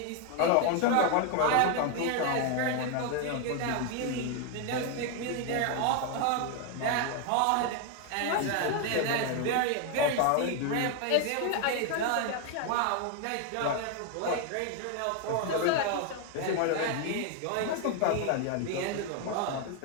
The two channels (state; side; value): different; both; correlation 0.01